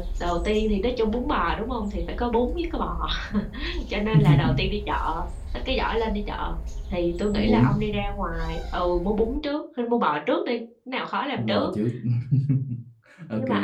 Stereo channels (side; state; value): both; identical; correlation 1.00